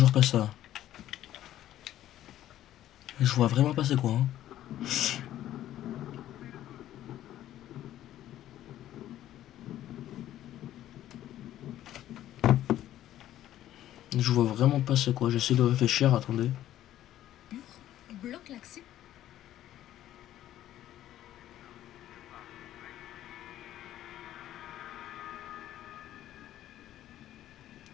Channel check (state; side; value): quieter; right; 12.8 dB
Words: pas ça. Je vois vraiment pas c'est quoi. Hein. Je vois vraiment pas c'est quoi. J'essaie de réfléchir. Attendez. Bloque l'accès.